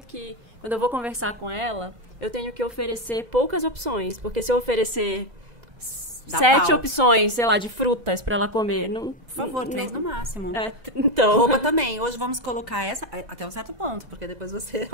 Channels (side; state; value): left; late; 2.0 ms